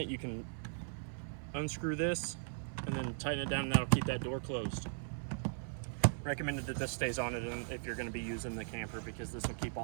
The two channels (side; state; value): left; silent; 52 dB below the other